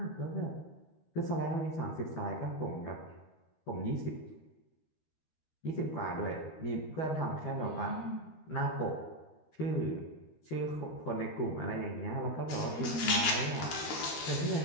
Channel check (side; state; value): right; late; 13 ms